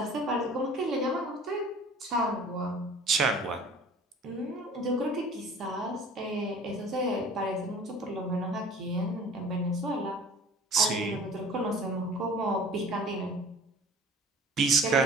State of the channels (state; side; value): normal; both; correlation 0.46